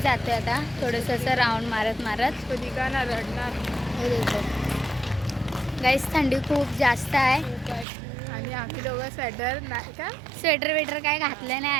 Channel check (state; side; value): drops out; left; at 7.9 s